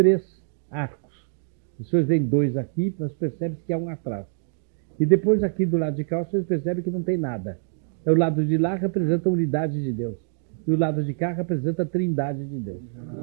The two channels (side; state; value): left; silent; 62 dB below the other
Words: arcos. Os senhores veem 2 aqui, mas percebem que há um atrás. E depois aqui do lado de cá, os senhores percebem que não tem nada. O lado de lá representa a unidade de Deus. E o lado de cá representa a trindade de Deus.